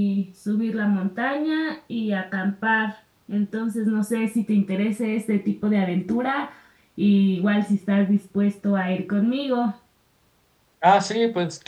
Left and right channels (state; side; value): identical; both; correlation 1.00